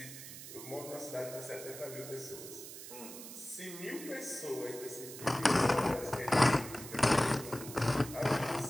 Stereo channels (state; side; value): noise; right; hiss, 12 dB below the sound